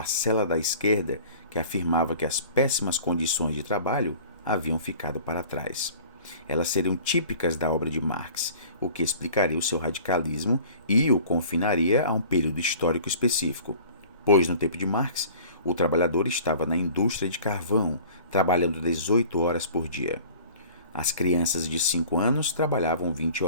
da esquerda que afirmava que as péssimas condições de trabalho haviam ficado para trás. Elas seriam típicas da obra de Marx, o que explicaria o seu radicalismo e o confinaria a um período histórico específico. Pois, no tempo de Marx, o trabalhador estava na indústria de carvão, trabalhando 18 horas por dia. As crianças de 5 anos trabalhavam 20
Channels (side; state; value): both; inverted; correlation -0.46